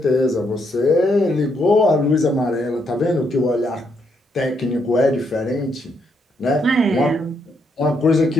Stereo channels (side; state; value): both; normal; correlation 0.76